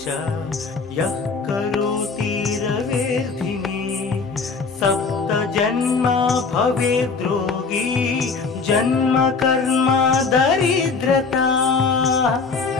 च यः करोति रवेर्धिने सप्त जन्म भवेद्रोगी जन्म कर्म दरिद्रता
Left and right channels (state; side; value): quieter; right; 4.6 dB